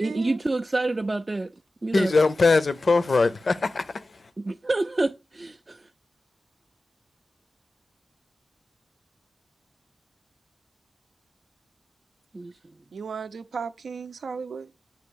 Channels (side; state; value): both; normal; correlation 0.94